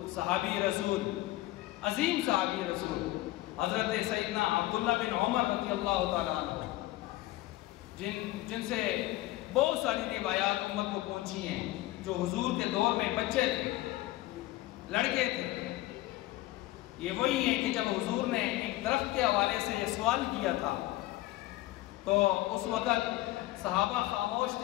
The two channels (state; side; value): quieter; right; 17.2 dB